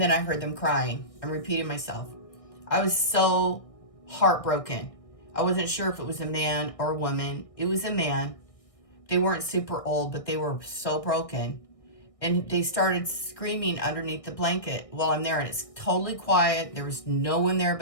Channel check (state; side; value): late; right; 1.6 ms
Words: then I heard them crying. I'm repeating myself. I was so heartbroken. I wasn't sure if it was a man or a woman. It was a man. They weren't super old, but they were so broken. And they started screaming underneath the blanket while I'm there. And it's totally quiet. There was no one there